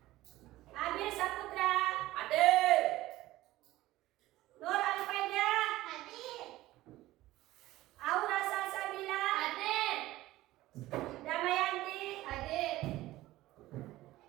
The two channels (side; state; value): left; quieter; 16.7 dB